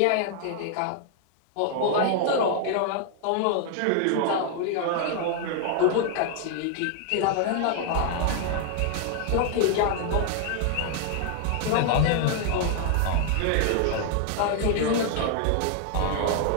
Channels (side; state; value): both; different; correlation 0.00